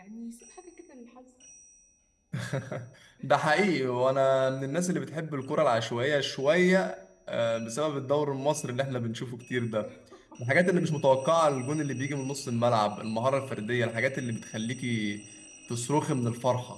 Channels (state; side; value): identical; both; correlation 1.00